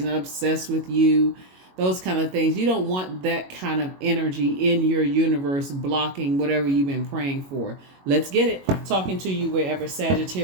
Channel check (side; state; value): left; late; 22 ms